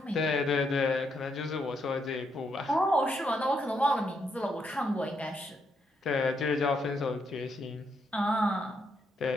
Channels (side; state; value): both; normal; correlation 0.78